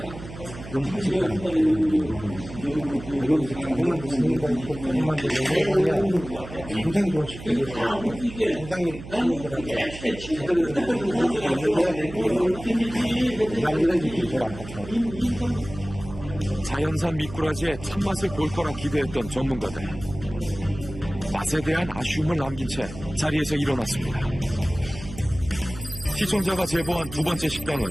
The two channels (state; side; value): noise; right; hum, 13 dB below the sound